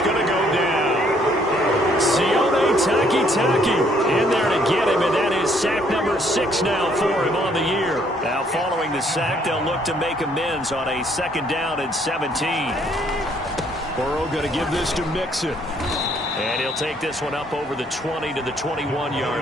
going to go down. Sione Takitaki in there to get him, and that is sack number 6 now for him on the year. Now following the sack, they'll look to make amends on a 2nd down and 17. Burrow going to give this to Mixon. And he'll take this one up over the 20 to the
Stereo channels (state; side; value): normal; both; correlation 0.66